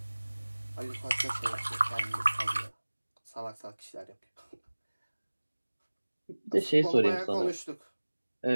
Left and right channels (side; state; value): both; inverted; correlation -1.00